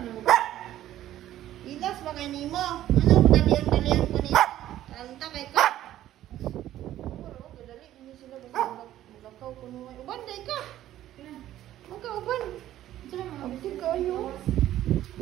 Ilas ba kay nimo? Ano dalian ko nito? Anta kay ka. Puro gadali ni sila basta magakaw kuno ay uban day ka. Magkauban. Abti kayo.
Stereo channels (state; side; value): quieter; left; 13.1 dB